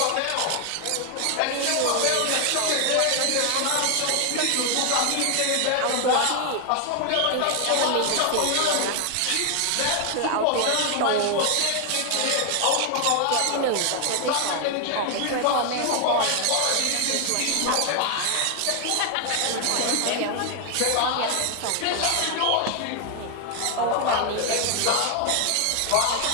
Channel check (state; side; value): different; both; correlation 0.01